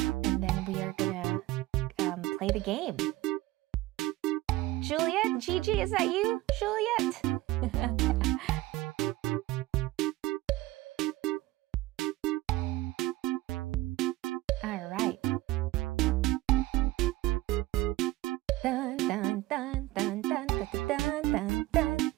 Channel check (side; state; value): left; quieter; 18.3 dB